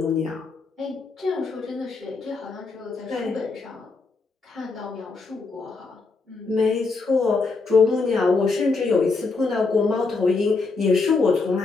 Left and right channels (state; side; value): quieter; right; 4.1 dB